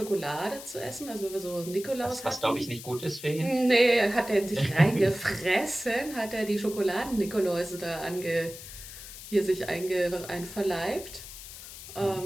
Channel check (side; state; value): left; noise; hiss, 13 dB below the sound